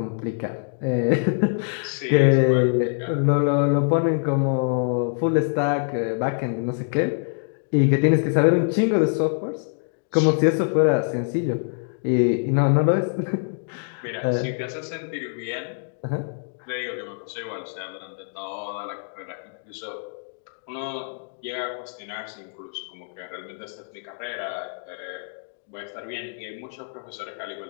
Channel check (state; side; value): silent; right; digital silence